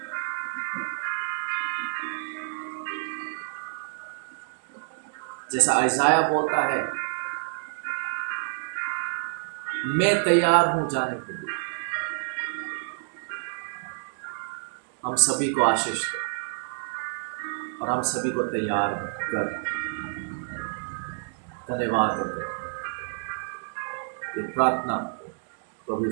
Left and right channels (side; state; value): left; silent; digital silence